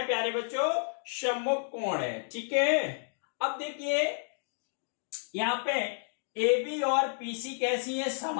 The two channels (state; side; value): silent; right; digital silence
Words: प्यारे बच्चों? सम्मुख कोण है। ठीक है, अब देखिए यहां पे ए बी और पीसी कैसी है?